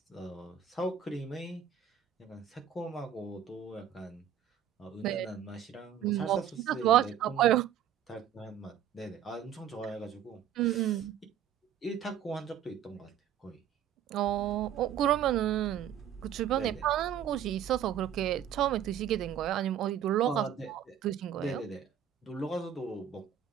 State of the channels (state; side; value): quieter; left; 9.6 dB